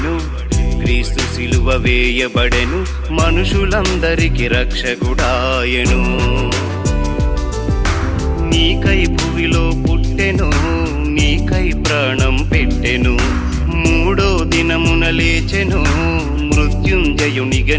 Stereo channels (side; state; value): both; identical; correlation 1.00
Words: క్రీస్తు సిలువ వేయబడెను, మనుషులందరికి రక్షకుడాయెను. నీకై భువిలో పుట్టెను, నీకై ప్రాణం పెట్టెను, మూడో దినమున లేచెను, మృత్యుంజయునిగా